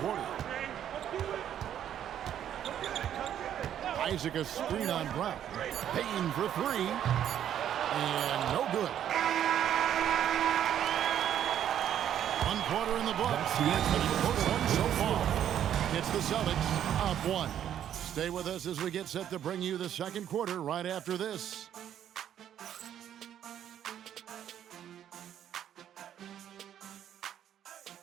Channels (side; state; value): left; quieter; 10.2 dB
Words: Isaac a screen on Brown. Bain for three. And no good. One quarter in the books. First one so far. It's the Celtics up one. Stay with us as we get set to bring you the second quarter right after this.